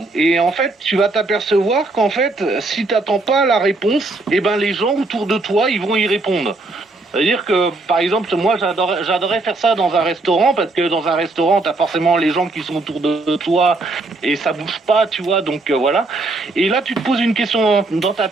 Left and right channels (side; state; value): left; quieter; 3.2 dB